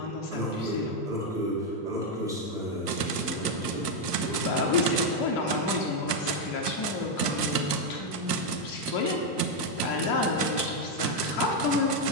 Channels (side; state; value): right; late; 1.3 ms